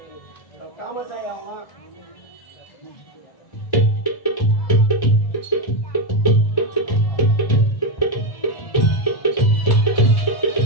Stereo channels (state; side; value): late; right; 1.1 ms